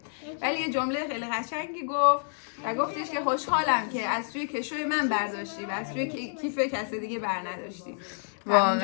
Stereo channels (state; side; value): silent; right; digital silence